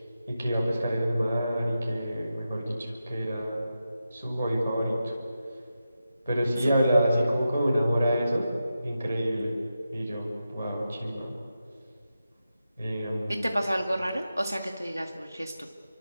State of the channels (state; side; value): inverted; both; correlation -0.90